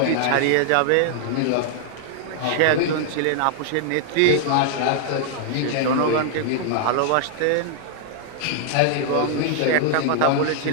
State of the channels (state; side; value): different; both; correlation -0.01